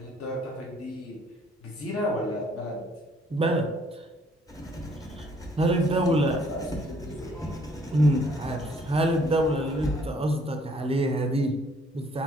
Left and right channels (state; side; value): normal; both; correlation 0.63